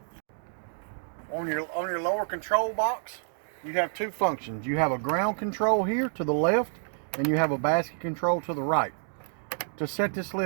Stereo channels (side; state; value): left; silent; digital silence